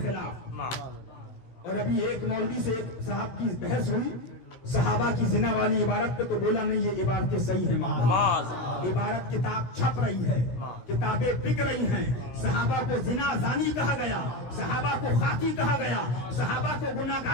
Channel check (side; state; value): right; late; 16 ms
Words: خلاف. اور ابھی ایک مولوی سے ایک صاحب کی بحث ہوئی صحابہ کی زنا والی عبارت پہ، تو بولا نہیں یہ عبارتیں صحیح ہیں. عبارت کتاب چھپ رہی ہے، کتابیں بک رہی ہیں. صحابہ کو زنا زانی کہا گیا، صحابہ کو خاطی کہا گیا، صحابہ کو